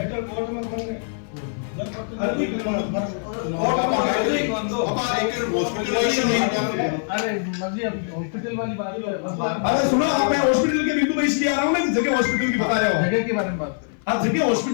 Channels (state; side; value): silent; right; 56 dB below the other